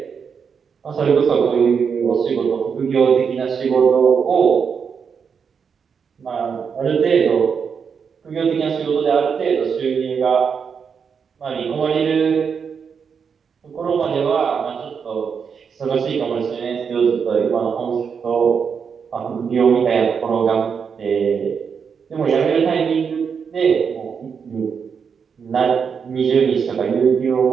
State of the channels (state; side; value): quieter; left; 6.4 dB